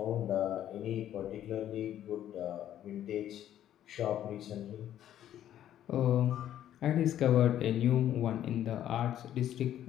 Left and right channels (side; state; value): right; quieter; 11.4 dB